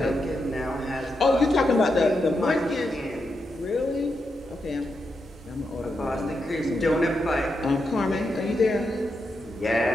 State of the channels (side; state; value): both; normal; correlation 0.85